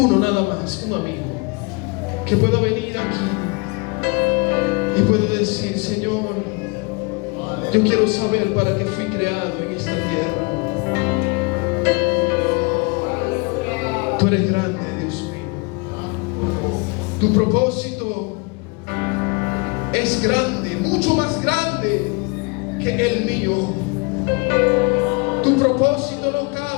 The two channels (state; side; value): quieter; right; 29.4 dB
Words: nada más, un amigo que pueda venir aquí y pueda decir: Señor, yo quiero saber para qué fui creado en esta tierra. Tú eres grande, Dios mío. Tu propósito es grande, mucho más grande que el mío. Tu propósito no